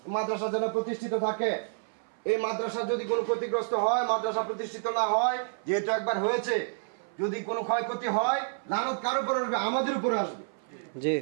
মাদ্রাসা যেন প্রতিষ্ঠিত থাকে। এই মাদ্রাসা যদি কোনো ক্ষতিগ্রস্ত হয়, মাদ্রাসা প্রতিষ্ঠিত না হয়, যেহেতু একবার হয়েছে, যদি কোনো ক্ষয়ক্ষতি হয়, লানত কার উপর আসবে? আমাদের উপরে আসবে। জি,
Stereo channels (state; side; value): silent; left; 57 dB below the other